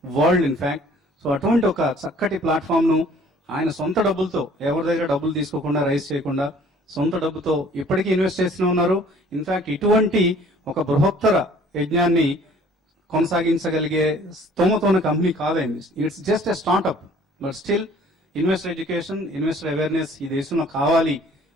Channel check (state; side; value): normal; both; correlation 0.54